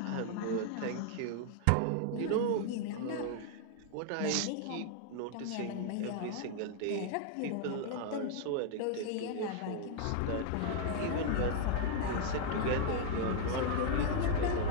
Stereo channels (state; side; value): different; both; correlation 0.00